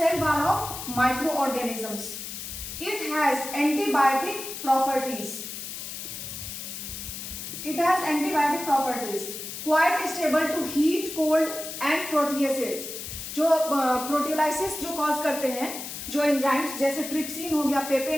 wall of microorganisms. It has antibiotic properties, quite stable to heat, cold and proteases. जो प्रोटियोलाइसिस जो कॉज करते हैं, जो एंजाइम्स जैसे ट्रिप्सिन हो गया,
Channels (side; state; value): left; noise; hiss, 8 dB below the sound